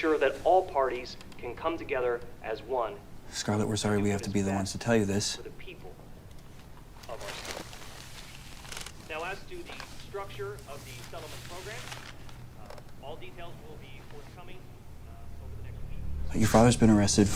that all parties can come together as one. Scarlet, we're sorry we have to be the ones to tell you this. For the people of our state. Now, as to the structure of the settlement program, all details will be forthcoming over the next week. Your father's been arrested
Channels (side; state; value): both; identical; correlation 1.00